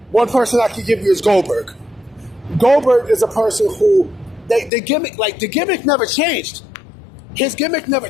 One person I can give you is Goldberg. Goldberg is a person who the gimmick never changed. His gimmick never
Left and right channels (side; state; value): right; drops out; at 4.7 s